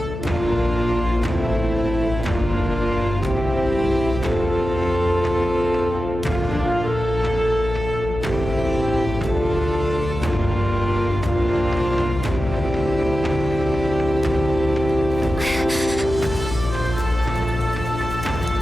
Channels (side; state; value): left; noise; hum, 8 dB below the sound